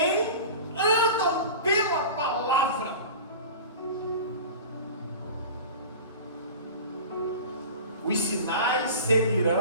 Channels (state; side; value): inverted; both; correlation -0.35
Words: andam pela palavra. Os sinais